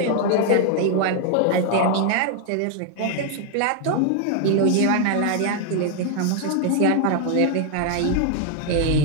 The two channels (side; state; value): both; different; correlation 0.00